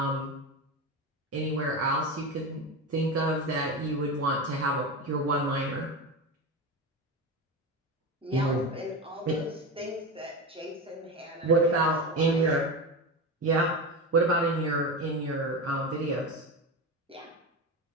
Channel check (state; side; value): normal; both; correlation 0.21